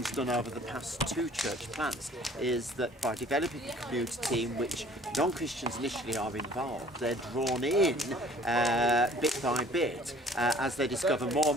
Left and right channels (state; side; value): normal; both; correlation 0.53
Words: done over the past 2 church plants, is that by developing a community in which non-Christians initially are involved, they're drawn in bit by bit as they discover more